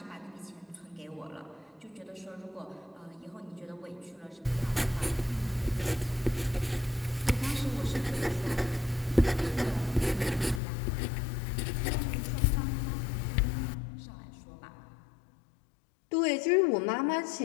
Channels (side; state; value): right; drops out; at 10.6 s